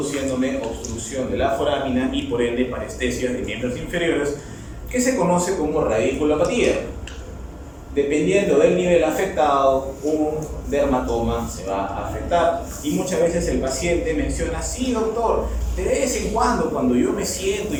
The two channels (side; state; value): both; identical; correlation 1.00